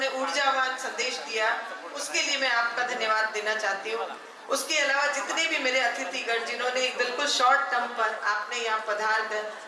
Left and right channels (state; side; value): identical; both; correlation 1.00